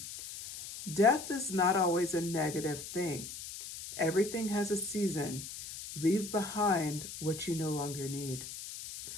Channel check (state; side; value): noise; left; hiss, 10 dB below the sound